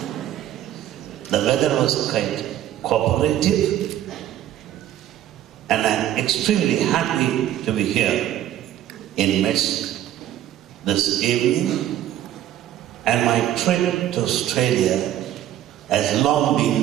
The weather was quite cooperative, and I'm extremely happy to be here in midst this evening. And my trip to Australia has long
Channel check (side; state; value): left; quieter; 12.2 dB